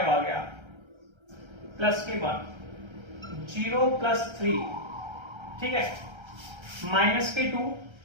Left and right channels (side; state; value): left; late; 1.3 ms